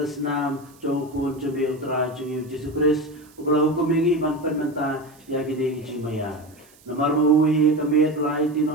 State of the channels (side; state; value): right; noise; hiss, 28 dB below the sound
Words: nam jongkun cumi utara cumi Yesus Kristus ublah hukum ini manfaat menta ya gini cimaya namar maui kamet lai